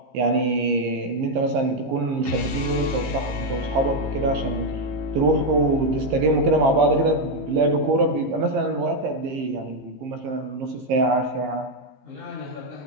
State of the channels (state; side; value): late; left; 15 ms